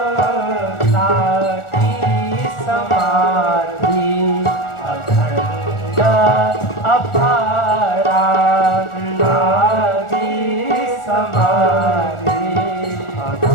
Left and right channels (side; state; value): right; late; 1.4 ms